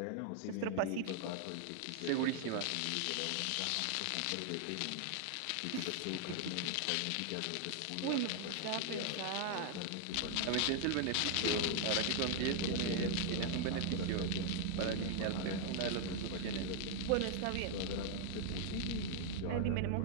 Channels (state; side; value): different; both; correlation 0.00